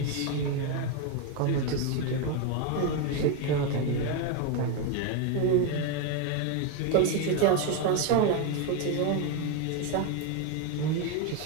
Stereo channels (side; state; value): both; different; correlation 0.02